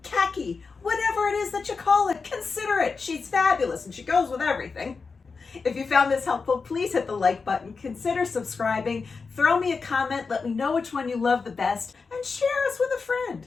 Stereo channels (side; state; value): right; quieter; 4.7 dB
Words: khaki, whatever it is that you call it, consider it. She's fabulous and she goes with everything. If you found this helpful, please hit the like button, consider subscribing, throw me a comment, let me know which one you love the best, and share us with a friend.